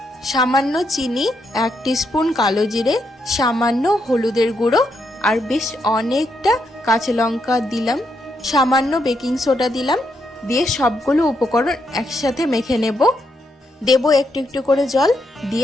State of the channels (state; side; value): normal; both; correlation 0.79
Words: সামান্য চিনি, 1 টিস্পুন কালো জিরে, সামান্য হলুদের গুঁড়ো আর বেশ অনেকটা কাঁচা লঙ্কা দিলাম, সামান্য বেকিং সোডা দিলাম। দিয়ে সবগুলো উপকরণ একসাথে মেখে নেব। দেব একটু একটু করে জল